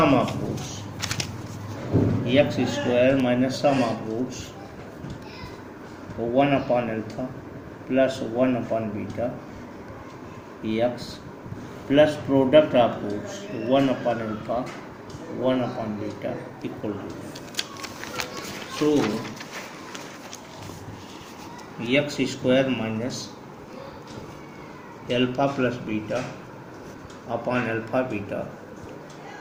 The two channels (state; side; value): identical; both; correlation 1.00